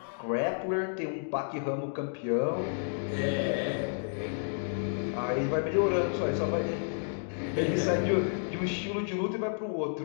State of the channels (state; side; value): silent; right; digital silence